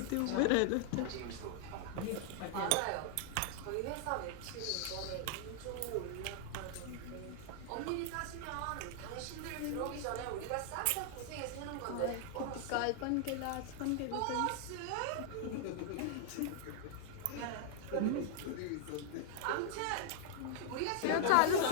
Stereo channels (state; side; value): different; both; correlation 0.00